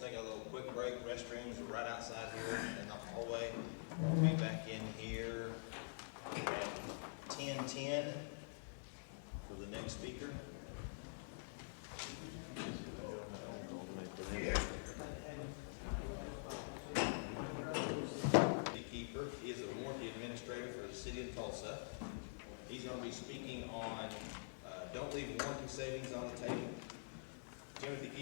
take a little quick break, restrooms are right outside here in the hallway. We'll be back in here at 10:10 for the next speaker. Keiffer is a warranty administrator for the City of Tulsa. He's going to be speaking on don't leave warranty savings on the table. Timothy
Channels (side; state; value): right; silent; digital silence